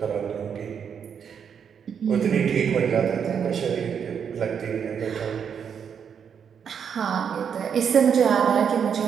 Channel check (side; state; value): left; quieter; 7.4 dB